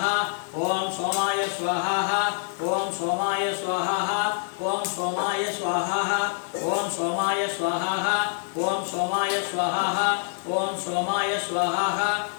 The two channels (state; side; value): silent; right; 61 dB below the other